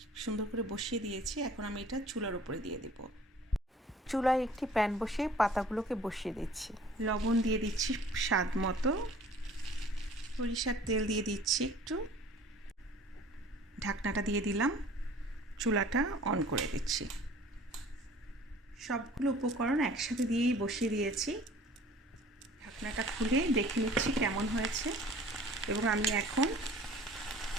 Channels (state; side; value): normal; both; correlation 0.50